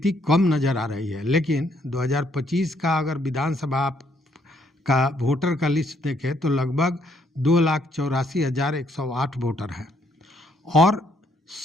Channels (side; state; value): both; normal; correlation 0.70